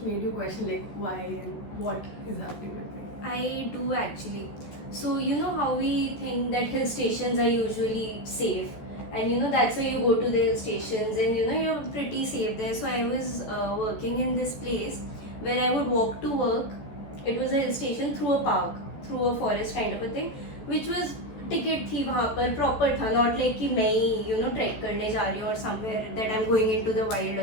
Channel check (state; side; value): late; right; 14 ms